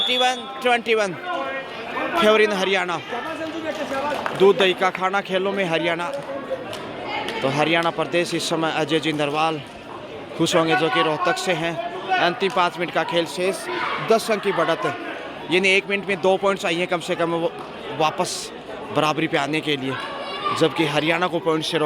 फेवरिन हरियाणा। दूध दही का खाना खेलों में हरियाणा। तो हरियाणा प्रदेश इस समय अजय जिंदरवाल खुश होंगे जो कि रोहतक से हैं। अंतिम 5 मिनट का खेल शेष, 10 अंक की बढ़त, यानी 1 मिनट में 2 पॉइंट चाहिए कम से कम वापस बराबरी पे आने के लिए, जबकि हरियाणा को पॉइंट से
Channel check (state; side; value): identical; both; correlation 1.00